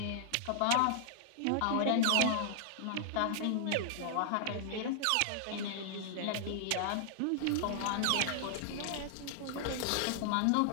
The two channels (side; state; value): both; different; correlation -0.01